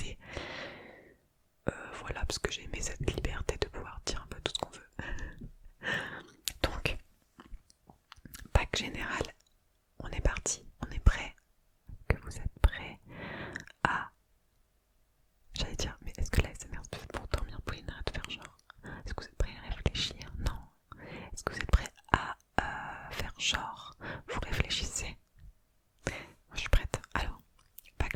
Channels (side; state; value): both; identical; correlation 1.00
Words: Voilà, parce que j'ai aimé cette liberté de pouvoir dire un peu tout ce qu'on veut. Donc, bac général, on est parti, on est prêt. Que vous êtes prêts à... J'allais dire, mais est-ce que la SMR se fait pour dormir, Pauline, arrête de faire genre. Est-ce que vous êtes prêts à réfléchir? Non. Est-ce que vous êtes prêts à faire genre? Vous réfléchissez? Moi je suis prête. Alors, bac